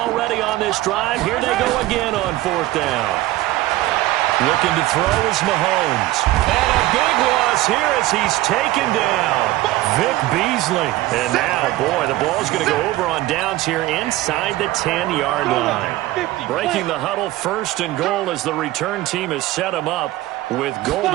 on this drive. Here they go again on 4th down. Looking to throw is Mahomes. And a big loss here as he's taken down. Vic Beasley. And now, boy, the ball's going to go over on downs here inside the 10-yard line. Breaking the huddle, 1st and goal as the return team has set him up with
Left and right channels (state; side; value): quieter; left; 17.0 dB